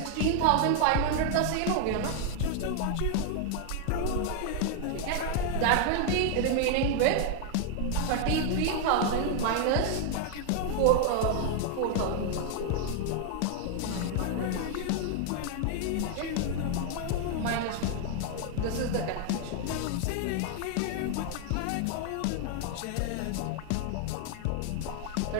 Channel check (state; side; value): different; both; correlation 0.00